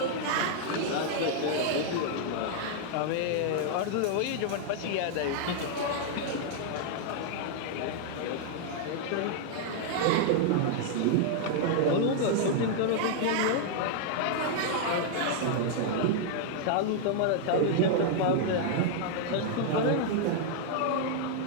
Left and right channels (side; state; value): both; different; correlation -0.01